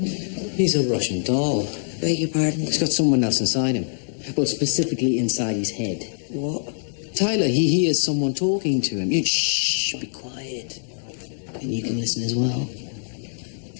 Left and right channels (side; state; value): right; silent; 62 dB below the other